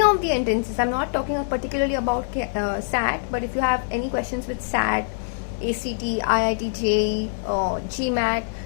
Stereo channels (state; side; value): silent; right; digital silence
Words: of the entrances, I'm not talking particularly about SAT, but if you have any questions with SAT, ACT, IIT, JEE, GMAT,